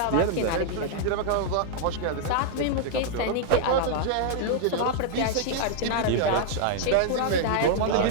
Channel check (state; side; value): different; both; correlation -0.01